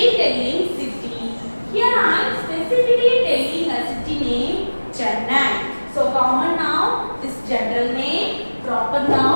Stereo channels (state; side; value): inverted; both; correlation -1.00